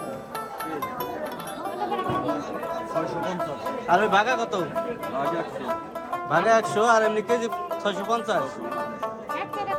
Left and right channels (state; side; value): identical; both; correlation 1.00